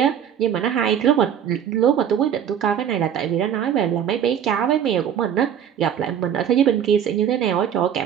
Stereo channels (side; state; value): left; quieter; 9.1 dB